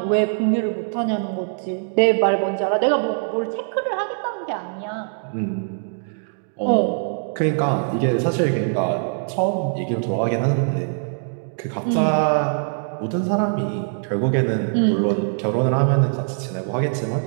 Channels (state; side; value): silent; left; digital silence